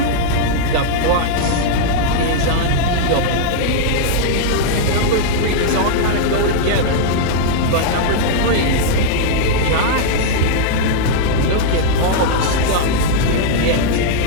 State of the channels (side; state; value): both; different; correlation -0.01